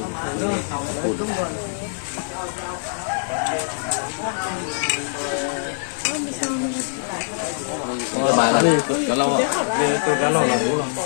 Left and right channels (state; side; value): silent; right; digital silence